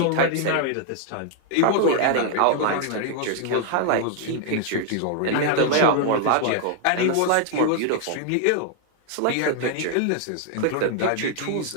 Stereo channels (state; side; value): different; both; correlation 0.00